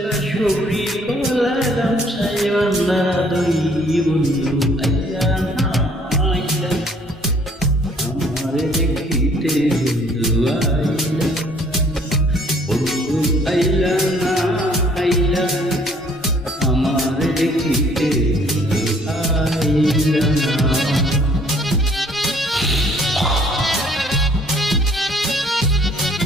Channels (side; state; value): both; normal; correlation 0.60